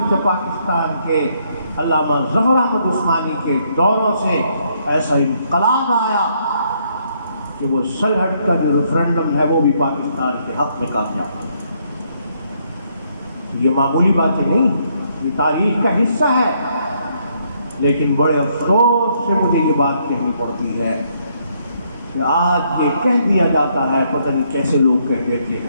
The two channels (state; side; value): inverted; both; correlation -0.71